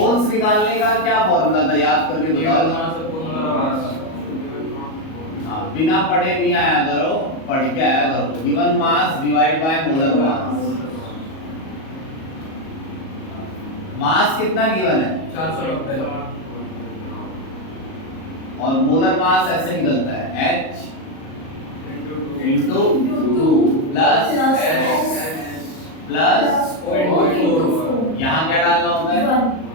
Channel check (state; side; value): late; right; 37 ms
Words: निकालने का क्या फॉर्मूला था, याद करके बताओ। हाँ, बिना पढ़े नहीं आया करो, पढ़ के आया करो। Given mass divide by molar mass. Mass कितना गिवन है? 490 और मोलर मास ऐसे निकलता है H into 2 प्लस यहाँ क्या डालना होता है?